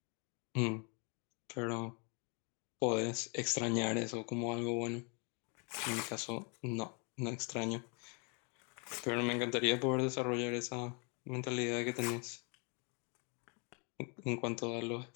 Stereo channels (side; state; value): right; quieter; 34.2 dB